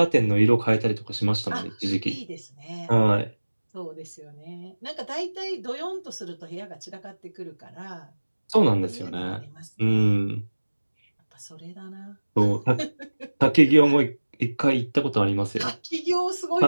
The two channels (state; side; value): inverted; both; correlation -1.00